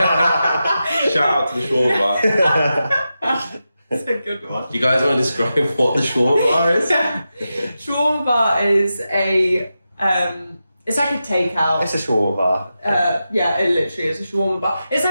shout out to the shawarma bar. That's a good one. Do you guys want to describe what the shawarma bar is? Shawarma bar is a It's like a takeout. It's a shawarma bar. Yeah, it literally is a shawarma bar. It's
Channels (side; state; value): both; inverted; correlation -0.90